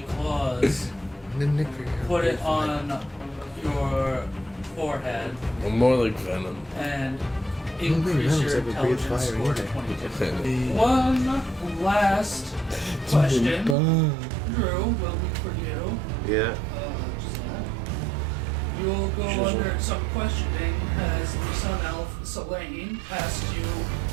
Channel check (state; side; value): drops out; left; at 13.8 s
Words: claws, put it on your forehead I'm more like Venom. and increase your intelligence score to 22. One last question, Drew, will be for you. Yeah. Just that. You'll go under some questioning as the Sun Elf Selene asks you,